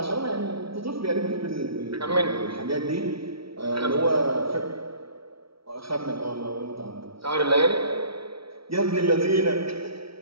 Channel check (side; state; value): left; late; 0.75 ms